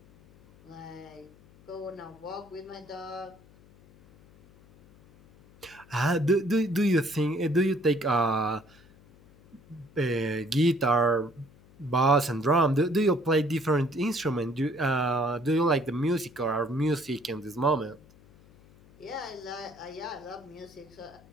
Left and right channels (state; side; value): noise; left; hum, 26 dB below the sound